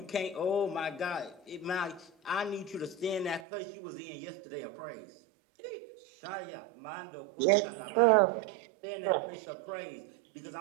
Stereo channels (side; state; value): left; drops out; at 3.4 s